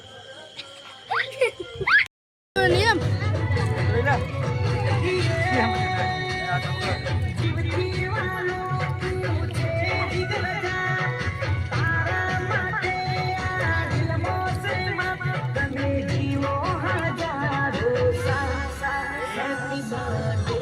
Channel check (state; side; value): identical; both; correlation 1.00